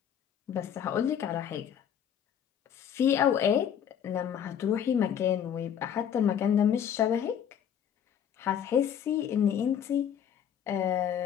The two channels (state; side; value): quieter; right; 8.9 dB